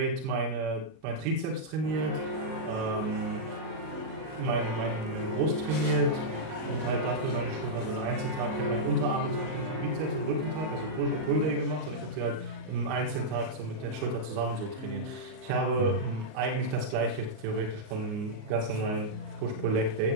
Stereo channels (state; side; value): late; left; 38 ms